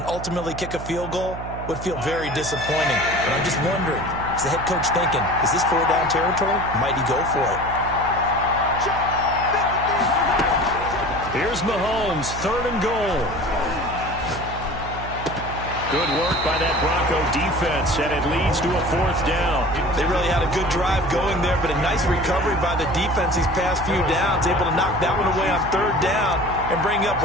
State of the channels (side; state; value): right; noise; hum, 10 dB below the sound